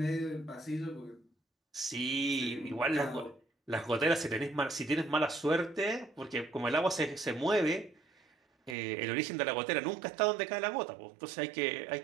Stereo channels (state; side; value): drops out; left; at 8.8 s